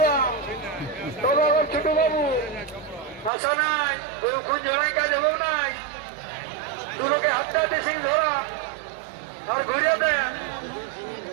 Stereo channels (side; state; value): left; drops out; at 3.3 s